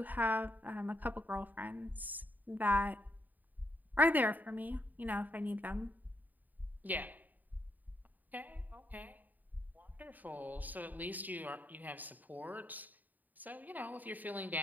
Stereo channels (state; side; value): late; left; 0.084 ms